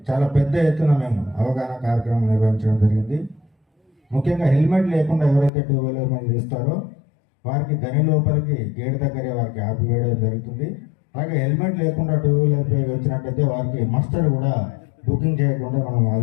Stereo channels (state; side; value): drops out; right; at 5.5 s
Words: చాలా పెద్ద ఎత్తున మేము అవగాహన కార్యక్రమం నిర్వహించడం జరిగింది. ముఖ్యంగా హెల్మెట్ లేకుండా ఎవరైతే 2 వీలర్ మీద తీస్తారో వారికి గని లోపలికి గేట్ దగ్గరే వారికి ఆపివేయడం జరుగుతుంది. అలాగే హెల్మెట్ లేకుండా 2 వీలర్ పై వచ్చినట్టయితే వారికి మస్టర్ కూడా బుకింగ్ చేయకుండా మనం